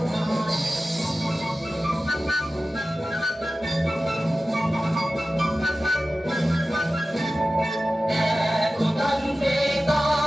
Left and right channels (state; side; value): normal; both; correlation 0.95